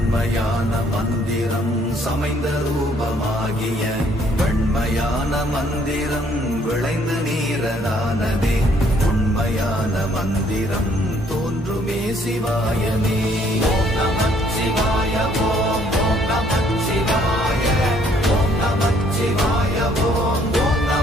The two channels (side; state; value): both; normal; correlation 0.64